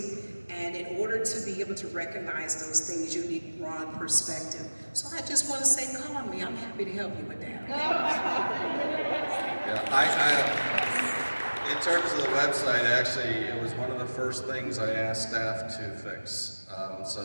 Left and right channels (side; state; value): both; inverted; correlation -1.00